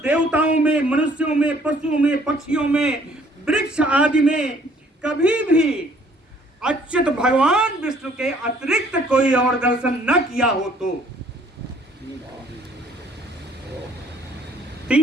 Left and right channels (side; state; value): both; normal; correlation 0.60